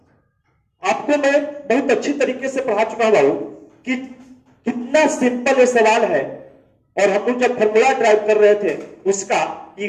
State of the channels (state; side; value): identical; both; correlation 1.00